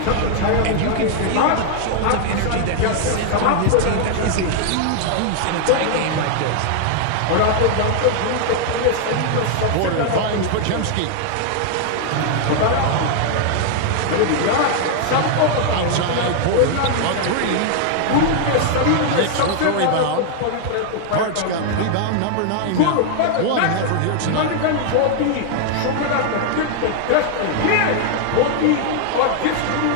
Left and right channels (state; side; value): different; both; correlation 0.00